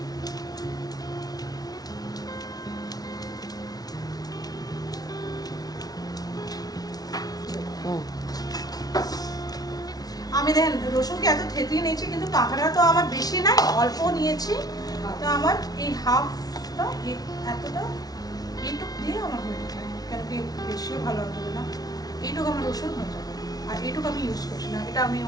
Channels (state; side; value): late; right; 0.19 ms